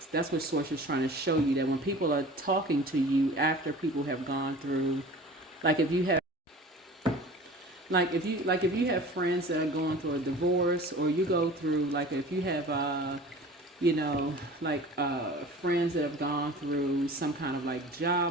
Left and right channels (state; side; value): normal; both; correlation 0.41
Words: That's what Source is trying to show you, that when people are talking to you after people have gone through, if you have friends that are going through a divorce, or you go through, if you have friends that have gone through some kind of